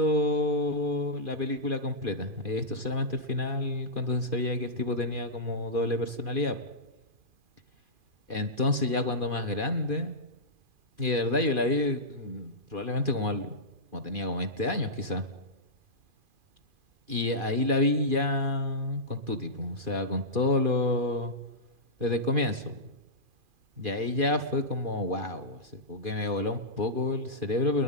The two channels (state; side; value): late; left; 2.4 ms